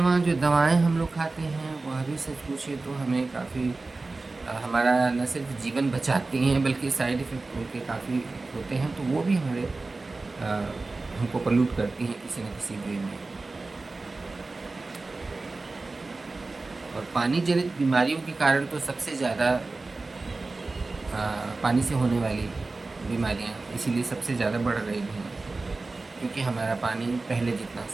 जो दवाएं हम लोग खाते हैं वह भी सच पूछे तो हमें काफ़ी हमारा न सिर्फ जीवन बचाती हैं बल्कि साइड इफ़ेक्ट उनके काफ़ी होते हैं, तो वो भी हमारे हमको पल्यूट करती हैं किसी न किसी वे में। और पानी जनित बीमारियों के कारण तो सबसे ज़्यादा पानी से होने वाली बीमारियां इसीलिए सबसे ज़्यादा बढ़ रही हैं, क्योंकि हमारा पानी पहले जितना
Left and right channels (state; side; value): quieter; left; 3.5 dB